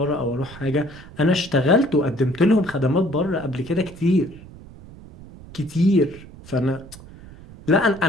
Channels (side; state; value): right; noise; rumble, 18 dB below the sound